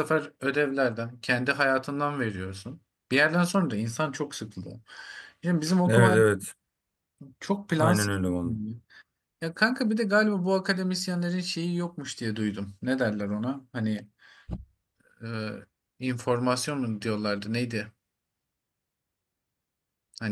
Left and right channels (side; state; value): both; identical; correlation 1.00